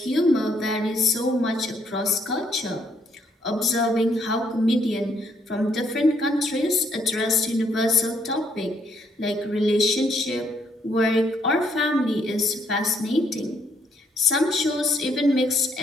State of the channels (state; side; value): normal; both; correlation 0.70